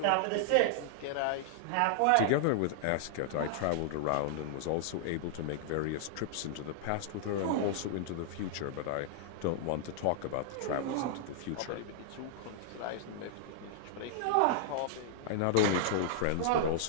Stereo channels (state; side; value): different; both; correlation -0.01